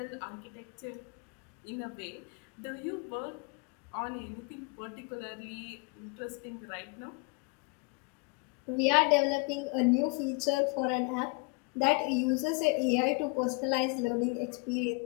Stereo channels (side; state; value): right; quieter; 29.8 dB